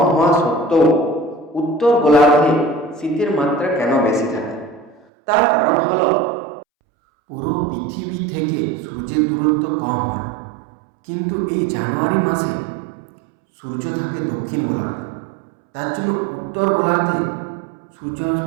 হওয়া সত্ত্বেও উত্তর গোলার্ধে শীতের মাত্রা কেন বেশি থাকে? তার কারণ হল পুরো পৃথিবী থেকে সূর্যের দূরত্ব কম হয়, কিন্তু এই জানুয়ারি মাসে সূর্য থাকে দক্ষিণ গোলার্ধে। তার জন্য উত্তর গোলার্ধে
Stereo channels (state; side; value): drops out; left; at 5.1 s